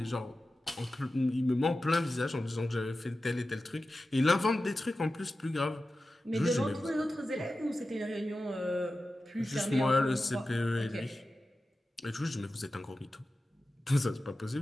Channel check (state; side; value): normal; both; correlation 0.94